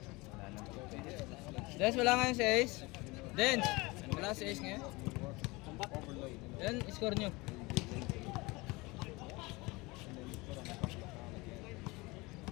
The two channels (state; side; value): quieter; right; 23.8 dB